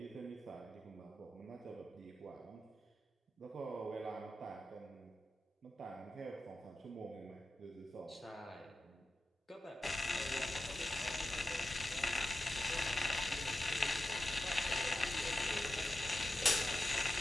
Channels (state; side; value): normal; both; correlation 0.91